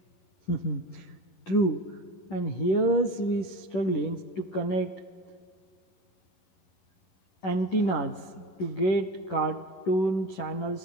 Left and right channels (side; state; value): right; late; 11 ms